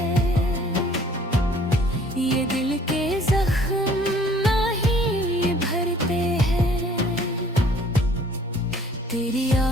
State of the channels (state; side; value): normal; both; correlation 0.55